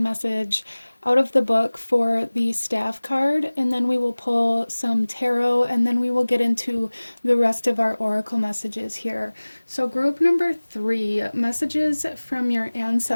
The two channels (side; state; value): both; inverted; correlation -1.00